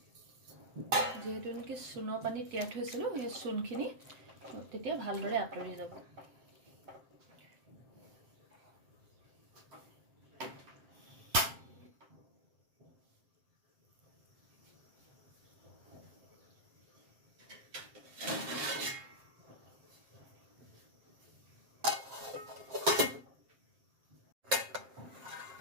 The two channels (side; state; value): left; late; 7.6 ms